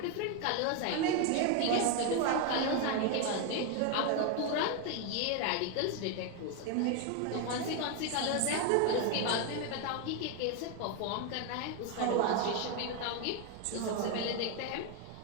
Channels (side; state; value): both; different; correlation 0.01